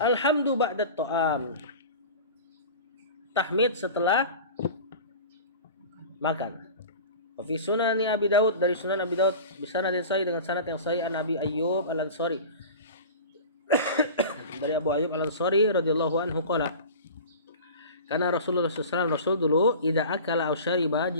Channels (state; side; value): inverted; both; correlation -0.36